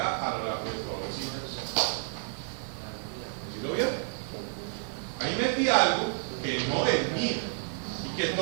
a lo largo de todos los siglos. ¿Sí lo vieron? Ahí metí algo que no es mío, y que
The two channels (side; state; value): left; silent; 58 dB below the other